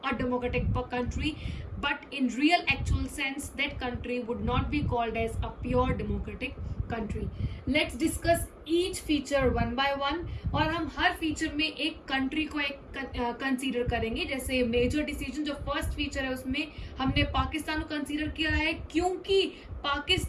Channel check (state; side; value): identical; both; correlation 1.00